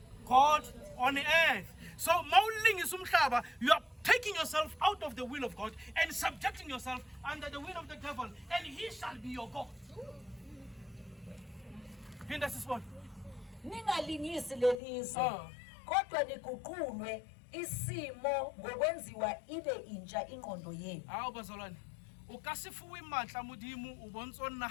God on the earth. So mauling is umhlaba, you are taking yourself out of the will of God and subjecting yourself under the will of the devil. devil, and he shall be your God. Phinda sisibone. Ningalingisi lelizwe. Kodwa niguqulwe isimo ngokwenziwa ibe intsha ingqondo yenu. Hawu bazalwane. O ka se fuwe matla modimo o bontso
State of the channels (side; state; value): right; drops out; at 14.8 s